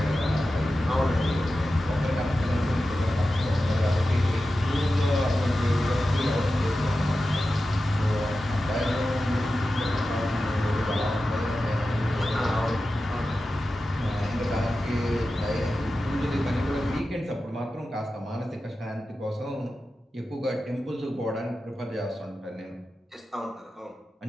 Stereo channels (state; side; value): normal; both; correlation 0.93